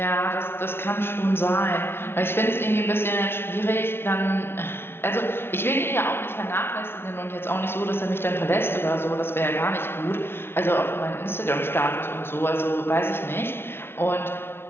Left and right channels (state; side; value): late; right; 0.11 ms